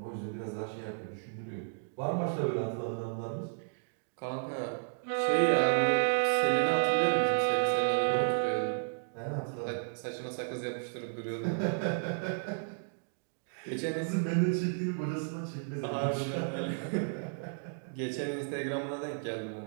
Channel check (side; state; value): left; silent; digital silence